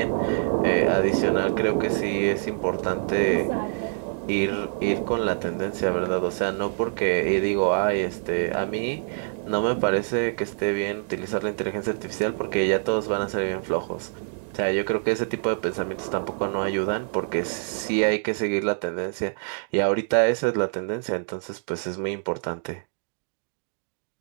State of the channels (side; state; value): left; silent; digital silence